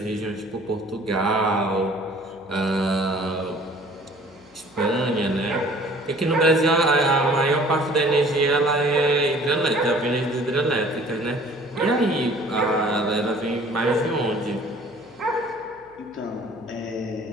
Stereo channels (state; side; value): noise; left; hum, 30 dB below the sound